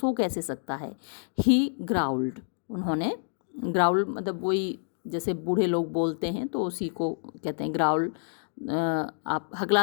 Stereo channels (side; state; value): right; silent; digital silence